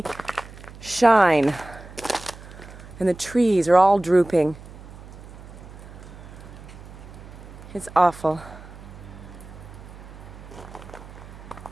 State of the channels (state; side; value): noise; right; hum, 16 dB below the sound